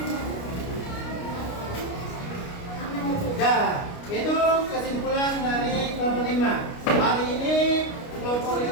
Itu kesimpulan dari kelompok 5. Hari ini kelompok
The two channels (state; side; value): late; right; 29 ms